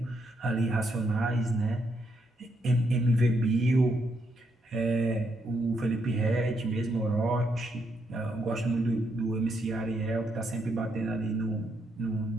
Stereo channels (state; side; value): normal; both; correlation 0.77